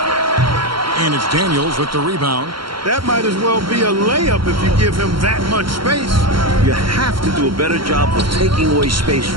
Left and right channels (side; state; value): left; late; 0.73 ms